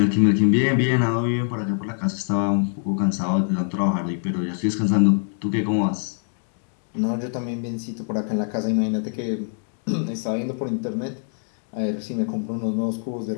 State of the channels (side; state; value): right; silent; digital silence